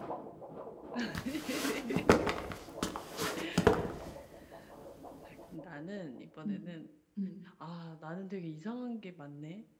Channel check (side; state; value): both; identical; correlation 1.00